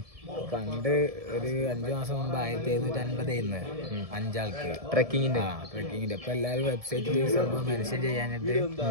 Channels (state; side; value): late; left; 1.7 ms